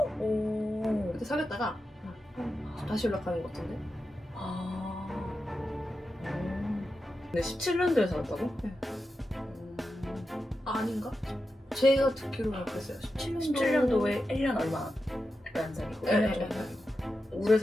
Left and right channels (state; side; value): normal; both; correlation 0.90